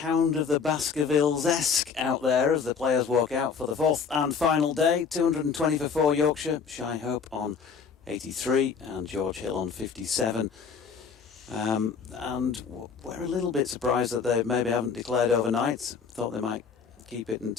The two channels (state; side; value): quieter; right; 6.0 dB